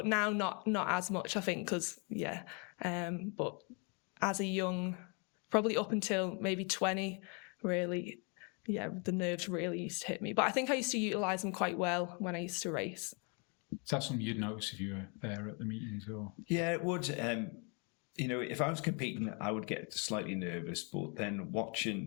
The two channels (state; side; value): quieter; right; 35.0 dB